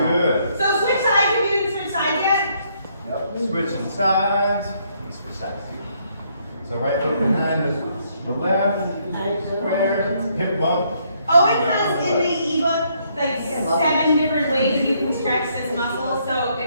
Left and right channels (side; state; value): both; inverted; correlation -0.71